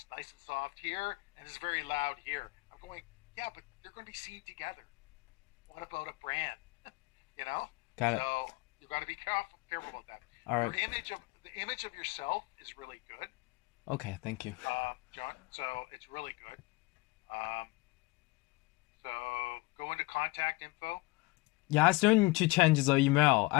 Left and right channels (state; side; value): quieter; right; 22.9 dB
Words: nice and soft here, and it's very loud here. I'm going, yeah, but they're going to be seen together. What about a brand? you know. Got it. So you've got to be careful about that. All right. Your image of the image of yourself is really good, Okay. Thank you. John. So it's really good. Um, so go into contact info. Yeah, I still need to change the email.